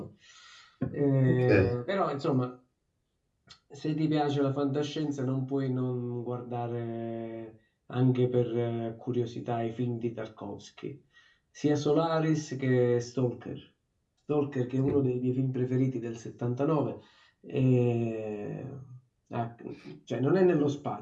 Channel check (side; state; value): both; identical; correlation 1.00